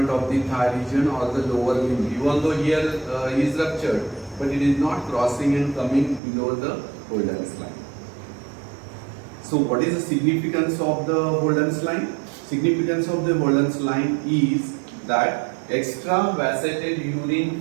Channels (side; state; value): left; drops out; at 6.2 s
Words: of the thigh region or the lower limb, even though here is ruptured, but it is not crossing and coming below the Holdens line. So what is the significance of the Holdens line? Significance of the Holdens line is that extravasated